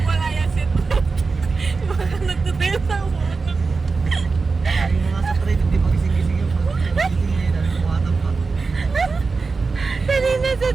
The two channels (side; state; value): left; quieter; 4.3 dB